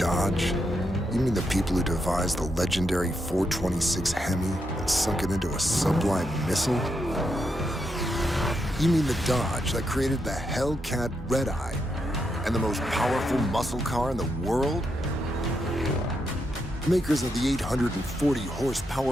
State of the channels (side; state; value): both; normal; correlation 0.82